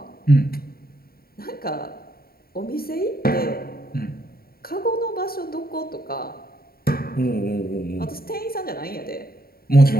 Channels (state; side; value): late; right; 0.44 ms